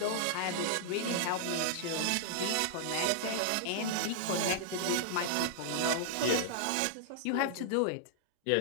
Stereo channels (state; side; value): different; both; correlation -0.01